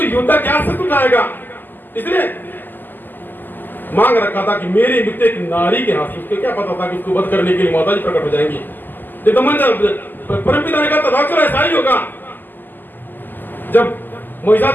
योद्धा क्या शत्रु उठाएगा, इसलिए मांग रखा था कि मेरी मृत्यु एक नारी के हाथ से। उसको क्या पता था कि उसको वध करने के लिए माता जी प्रकट हो जाएंगी। परमपिता ने कहा तथास्तु ऐसा ही होगा। जब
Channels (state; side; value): late; right; 0.089 ms